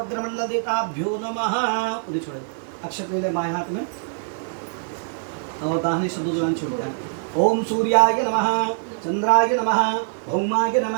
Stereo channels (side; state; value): left; silent; digital silence